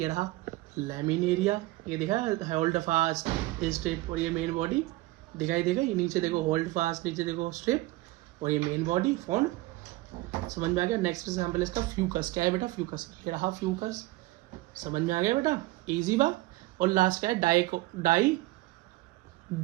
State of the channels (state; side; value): quieter; left; 19.4 dB